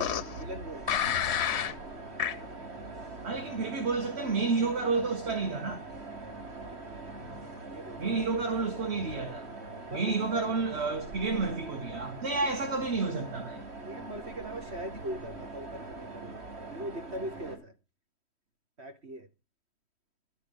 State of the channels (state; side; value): late; left; 3.1 ms